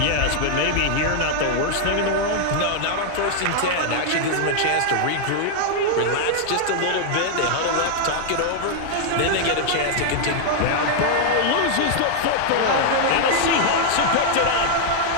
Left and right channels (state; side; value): different; both; correlation 0.00